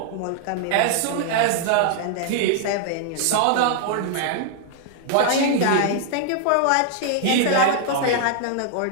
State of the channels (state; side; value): different; both; correlation -0.01